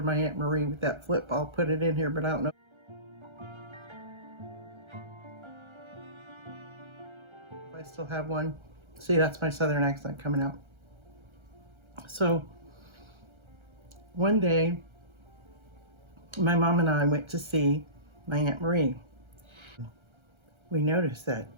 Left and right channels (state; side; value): late; left; 1.3 ms